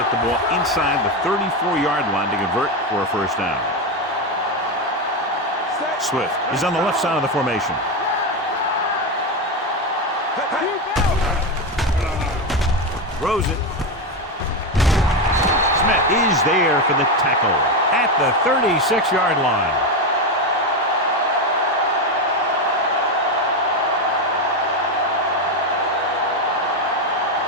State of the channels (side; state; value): both; normal; correlation 0.12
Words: the ball inside the 34-yard line to convert for a first down. Swift is on the left side of the formation. Throws it. Smith is there for the tackle at the 36-yard line.